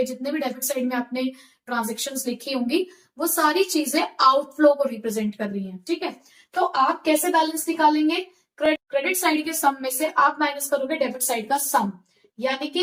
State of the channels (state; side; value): identical; both; correlation 1.00